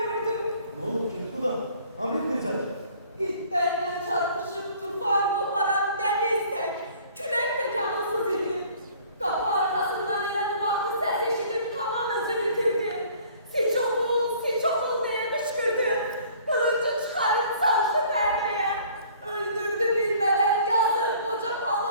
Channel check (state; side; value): inverted; both; correlation -0.54